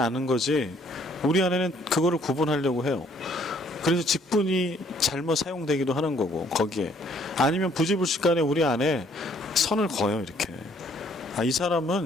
거지 우리 안에는 그거를 구분하려고 해요. 그래서 직분이 잘못 사용되기도 하는 거고, 거기에 아니면 부지불식간에 우리 안에 선을 그어요. 이렇게 이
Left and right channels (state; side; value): normal; both; correlation 0.63